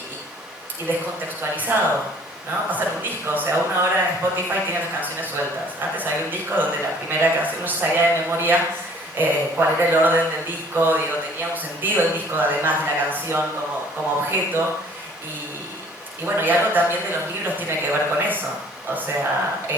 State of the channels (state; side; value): normal; both; correlation 0.54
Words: descontextualizado, ¿no? Va a ser un disco, o sea, uno ahora en Spotify tiene las canciones sueltas. Antes había un disco donde la primera canción uno sabía de memoria cuál era el orden del disco, tenía un sentido el disco además de la canción como objeto y bueno, y algo también de los libros tiene que ver con eso. O sea,